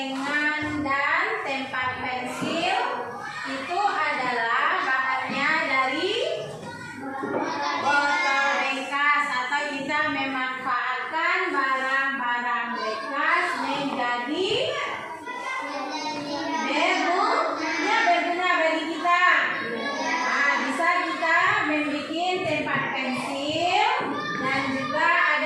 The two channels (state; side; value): identical; both; correlation 1.00